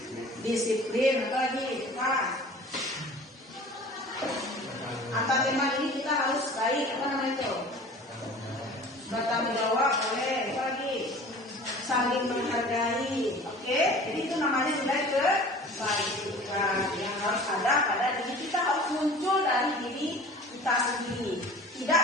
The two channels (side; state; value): both; normal; correlation 0.43